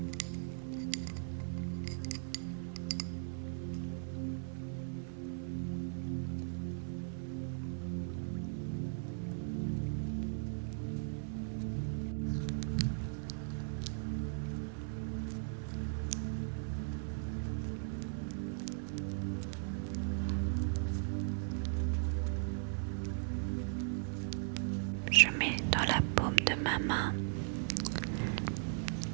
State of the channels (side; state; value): left; silent; 53 dB below the other